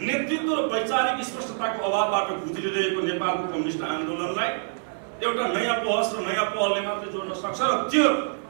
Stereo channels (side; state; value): left; silent; 61 dB below the other